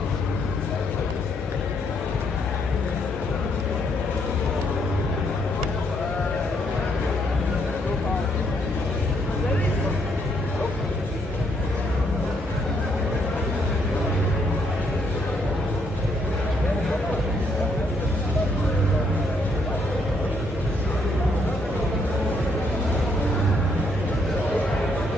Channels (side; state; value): both; normal; correlation 0.73